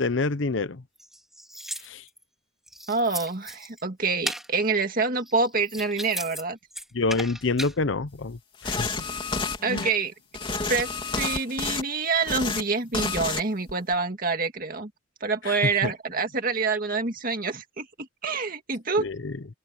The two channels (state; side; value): normal; both; correlation 0.10